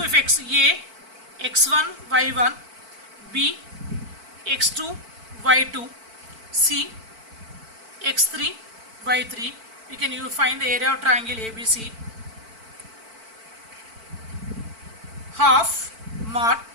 if A, x1, y1, B, x2, y2, C, x3, y3, you can find the area of triangle ABC. Half mod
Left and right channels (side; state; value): left; late; 4.5 ms